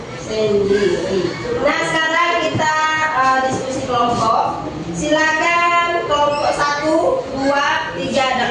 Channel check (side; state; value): both; identical; correlation 1.00